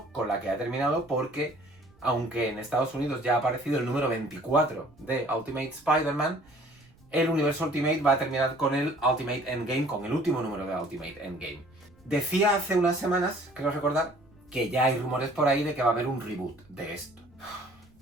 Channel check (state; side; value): noise; right; rumble, 28 dB below the sound